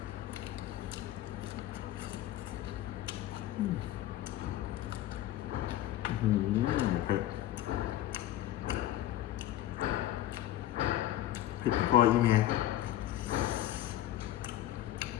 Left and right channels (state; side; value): quieter; right; 13.6 dB